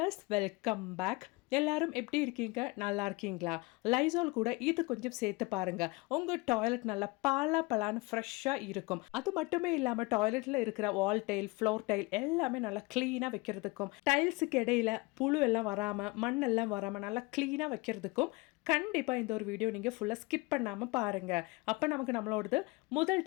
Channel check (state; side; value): quieter; right; 24.6 dB